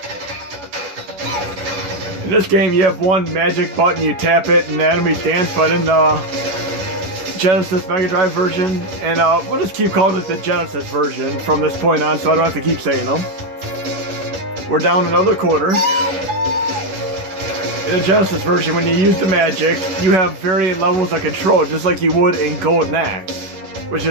In this game, you have one magic button, you tap it, and the enemies dance, but in the Genesis Mega Drive version, and we'll just keep calling it the Genesis version from this point on, so I don't have to keep saying them. We're down another quarter. In the Genesis version, when you use the magic, you have varying levels of control, just like you would in Golden Axe, which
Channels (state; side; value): late; left; 10 ms